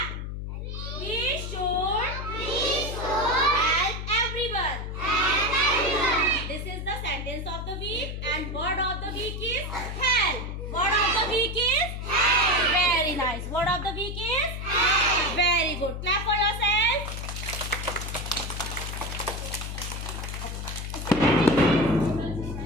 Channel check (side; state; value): left; noise; hum, 6 dB below the sound